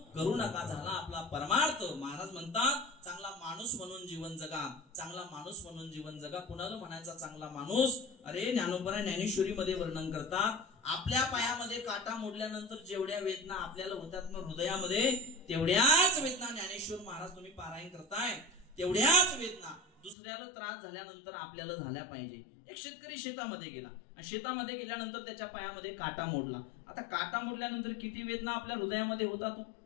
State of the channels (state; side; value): drops out; right; at 20.2 s